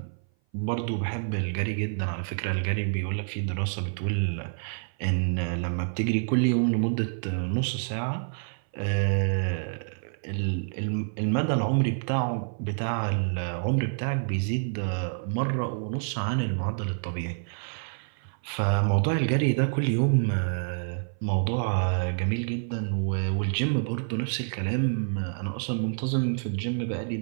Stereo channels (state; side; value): silent; left; 57 dB below the other